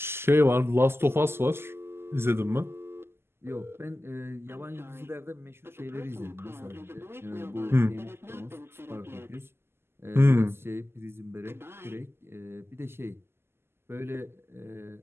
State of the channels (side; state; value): left; late; 0.12 ms